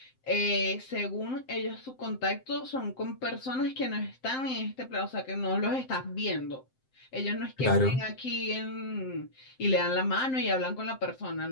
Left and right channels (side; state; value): right; late; 7.7 ms